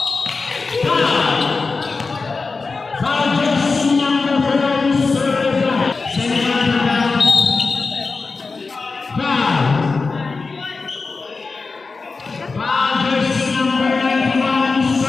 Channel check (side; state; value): right; quieter; 4.2 dB